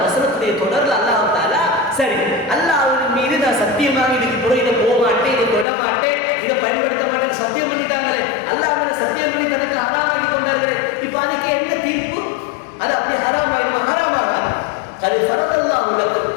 வசனத்துடைய தொடர்ல அல்லாஹ் தஆலா சரி அல்லாஹ் மீது நான் சத்தியமாக இதுக்கு பிறகு இதை போக மாட்டேன், இதை தொட மாட்டேன், இதை பயன்படுத்த மாட்டேன்னு சத்தியம் பண்ணிட்டாங்களே, அல்லாஹ் மேல சத்தியம் பண்ணி தனக்கு ஹராமாக்கி கொண்டார்களே, இப்ப அதுக்கு என்ன தீர்ப்பு? அது அப்படி ஹராமாயிருமா? ஹராமாகாது. அது ஃபரதல்லாஹு லக்கும்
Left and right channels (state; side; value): drops out; right; at 5.7 s